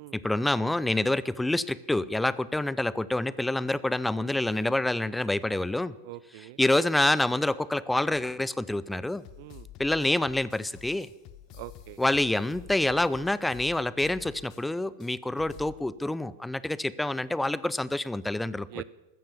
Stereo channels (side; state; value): both; normal; correlation 0.97